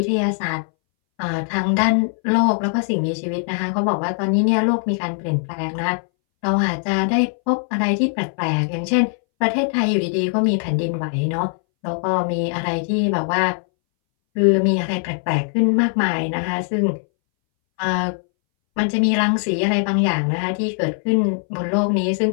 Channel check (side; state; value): right; silent; 63 dB below the other